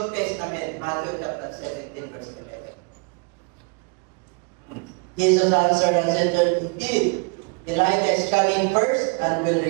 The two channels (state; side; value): quieter; left; 33.0 dB